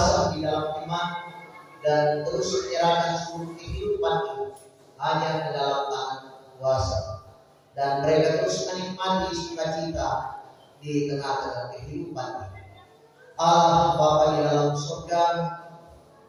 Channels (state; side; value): identical; both; correlation 1.00